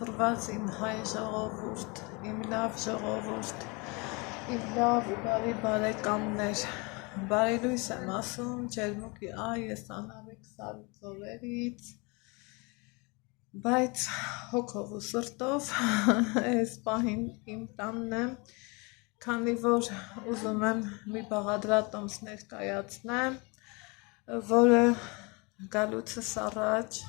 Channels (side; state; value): right; quieter; 28.8 dB